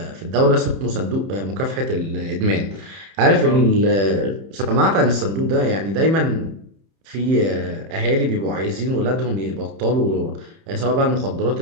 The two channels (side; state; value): left; late; 31 ms